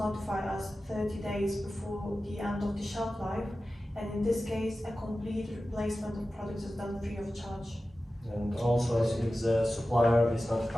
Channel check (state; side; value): normal; both; correlation 0.94